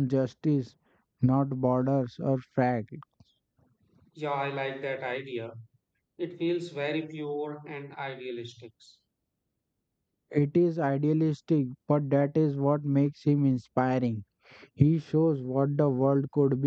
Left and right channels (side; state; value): both; identical; correlation 1.00